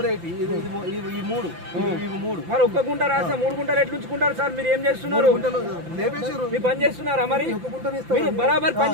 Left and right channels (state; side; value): late; left; 5.9 ms